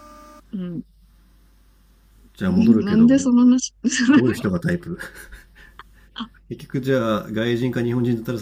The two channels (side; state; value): both; identical; correlation 1.00